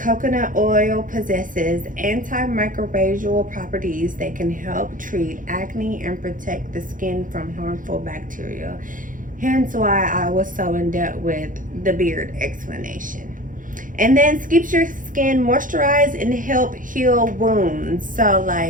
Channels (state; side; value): late; left; 0.39 ms